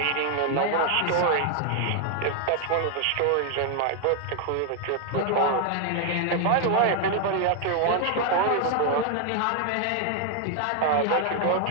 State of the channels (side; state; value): both; different; correlation 0.00